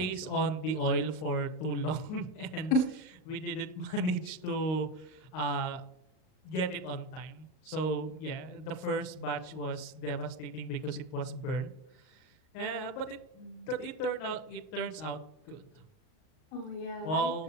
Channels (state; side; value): late; right; 38 ms